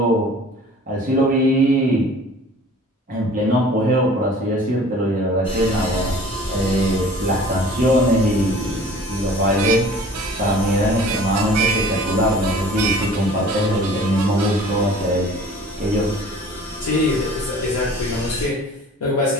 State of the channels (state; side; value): normal; both; correlation 0.47